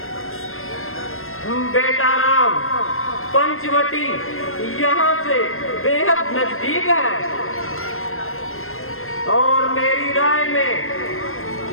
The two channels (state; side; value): late; right; 0.61 ms